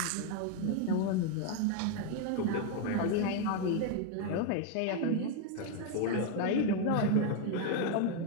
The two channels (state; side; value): different; both; correlation 0.01